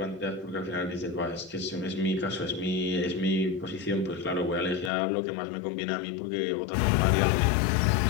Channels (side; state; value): right; drops out; at 4.9 s